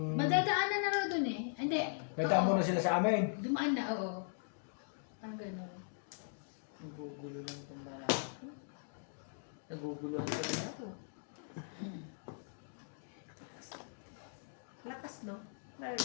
Madadaanan na raw dun eh. Hindi. Nadaan mo Oo. na sila sa amin. Dumaan na, oo. Parang gano'n. Nagugulo lang itong mga ako. Naguguluhan ko rin ako. Lakas no?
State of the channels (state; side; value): silent; right; digital silence